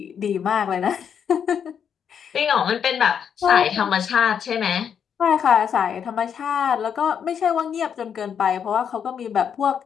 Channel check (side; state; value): right; quieter; 7.8 dB